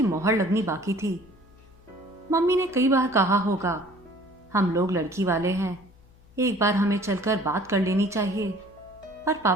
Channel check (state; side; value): noise; left; hum, 27 dB below the sound